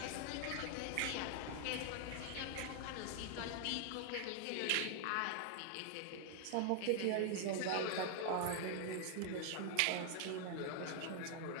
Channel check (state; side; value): different; both; correlation 0.00